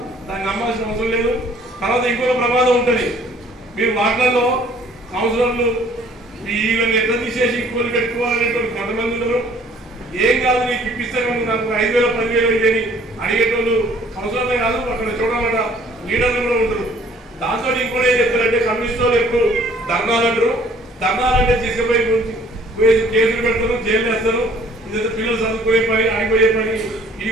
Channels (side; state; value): both; normal; correlation 0.57